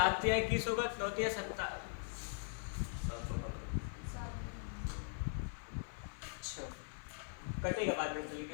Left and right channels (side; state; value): right; silent; digital silence